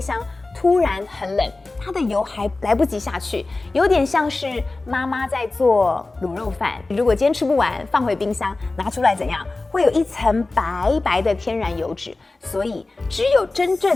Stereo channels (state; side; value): quieter; right; 3.3 dB